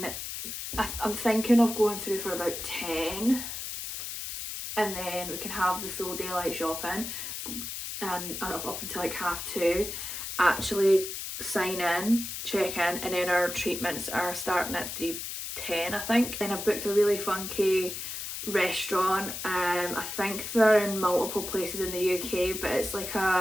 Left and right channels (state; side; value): noise; left; hiss, 6 dB below the sound